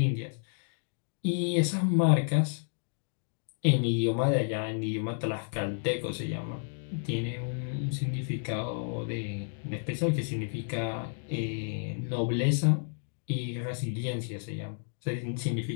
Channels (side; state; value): right; silent; digital silence